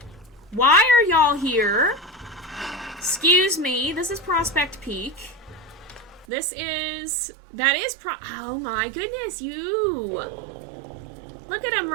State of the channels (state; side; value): drops out; left; at 6.2 s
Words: Why are y'all here? Excuse me, this is Prospect Peak. Oh my goodness, you! Look at them